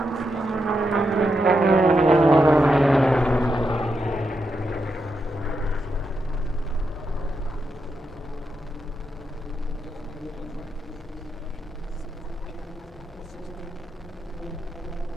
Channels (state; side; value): normal; both; correlation 0.84